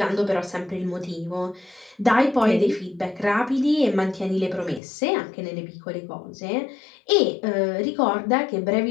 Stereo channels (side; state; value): right; drops out; at 4.8 s